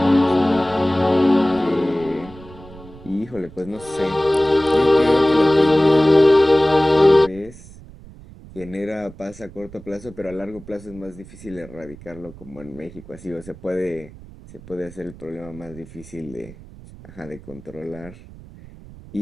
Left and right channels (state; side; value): noise; right; rumble, 19 dB below the sound